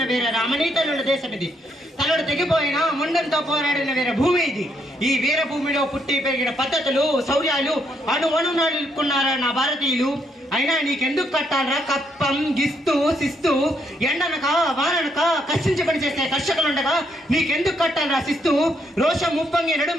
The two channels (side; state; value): both; normal; correlation 0.74